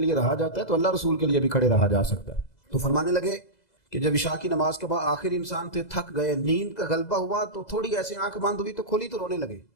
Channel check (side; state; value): right; late; 2.0 ms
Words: رہا جاتا ہے تو اللہ رسول کے لیے بھی کھڑے رہا جا سکتا ہے۔ تو فرمانے لگے کہ جب عشاء کی نماز کے بعد آخر انسان تھے، تھک گئے، نیند کا غلبہ ہوا تو تھوڑی ایسے آنکھ بند ہوئی تو کھولی تو رونے لگے۔